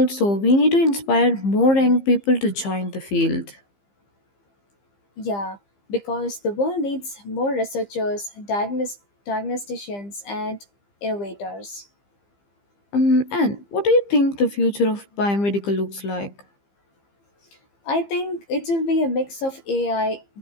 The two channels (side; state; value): right; late; 15 ms